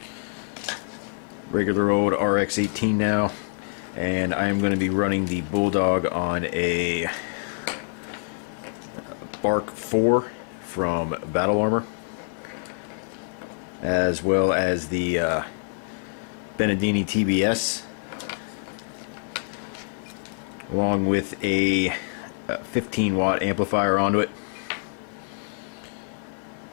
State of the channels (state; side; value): silent; right; digital silence